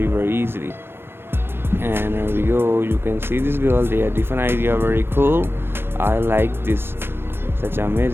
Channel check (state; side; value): late; left; 0.11 ms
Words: easily. And here we go, you can see this girl, they are different idea, very cool. I like this, such